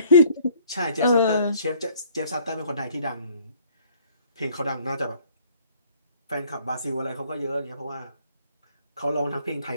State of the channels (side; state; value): both; inverted; correlation -0.58